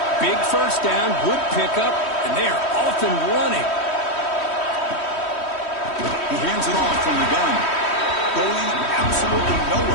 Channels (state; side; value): late; right; 3.1 ms